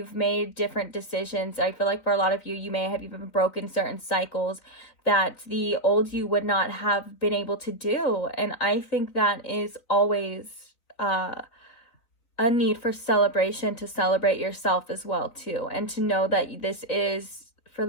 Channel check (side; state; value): right; late; 4.1 ms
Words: made different decisions. I feel like for a lot of you, you may have even broken certain cycles that the old you would not have been able to do. And I think that is always a need for celebration, to celebrate yourself as well too, and to know that this is for